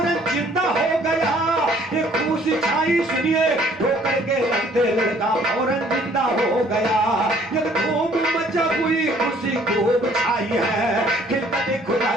जिंदा हो गया ये खुशी छाई सुनिए ठोकर के लगते लड़का फौरन जिंदा हो गया ये खूब मचा हुई खुशी खूब छाई है खिलते खुदा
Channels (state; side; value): normal; both; correlation 0.59